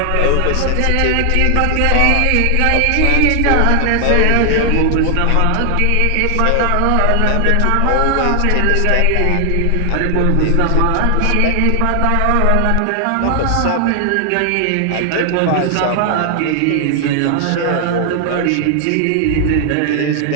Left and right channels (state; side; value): different; both; correlation 0.00